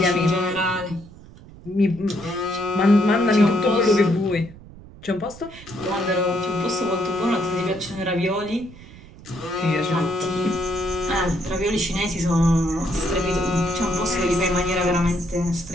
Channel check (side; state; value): right; noise; rumble, 19 dB below the sound